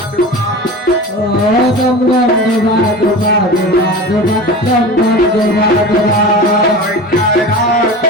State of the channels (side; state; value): both; normal; correlation 0.32